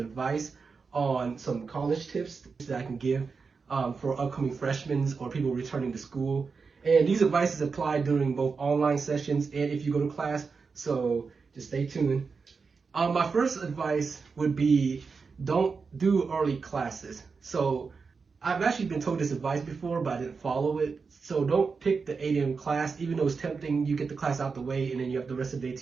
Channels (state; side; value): quieter; left; 4.9 dB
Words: on some college tips that I can give for upcoming freshmen or people returning to school. And these advices apply during both online sessions and if you go to class. So, just stay tuned. My first advice would be don't do early classes. So, I've actually been told this advice before, but I didn't follow it. So don't pick the 8 a.m. class, even though it's tempting. You get the class out the way, and then you have the rest of the day